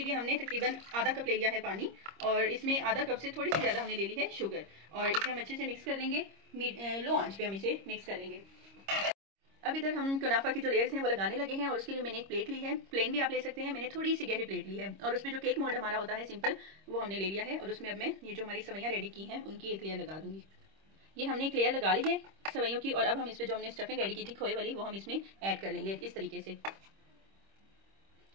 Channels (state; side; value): late; left; 26 ms